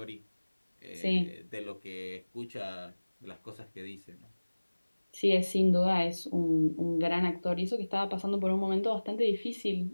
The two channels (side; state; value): both; inverted; correlation -1.00